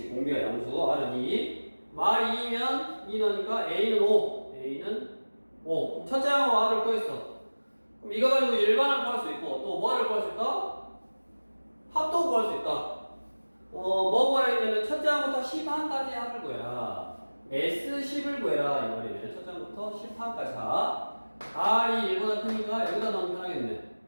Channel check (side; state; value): both; inverted; correlation -1.00